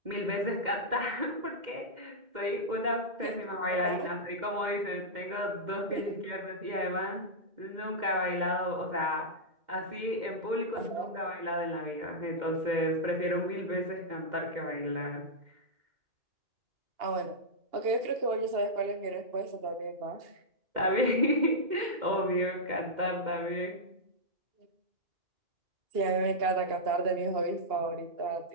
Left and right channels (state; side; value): late; left; 2.1 ms